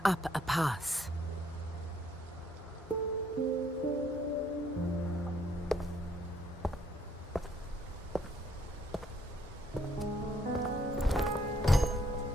up a path.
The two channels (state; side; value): normal; both; correlation 0.68